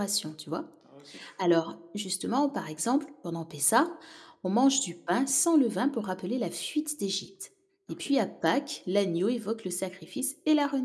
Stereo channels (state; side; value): identical; both; correlation 1.00